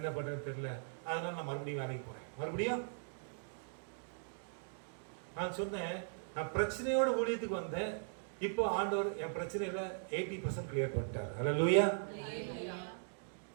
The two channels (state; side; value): silent; left; digital silence